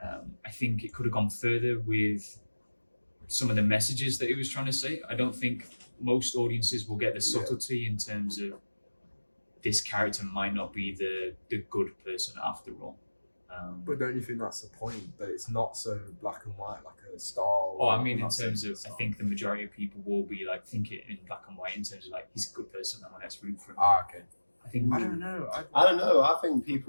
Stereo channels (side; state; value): both; inverted; correlation -1.00